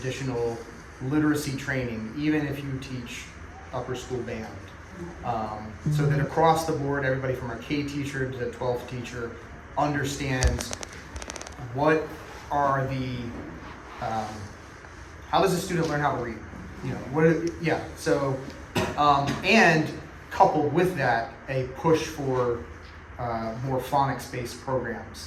literacy training, even if you teach upper school band. So that across the board, everybody from our K teacher to the 12th teacher understands what are the, how does a student learn how to read? And coupled with that, a push for more phonics-based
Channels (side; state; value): both; identical; correlation 1.00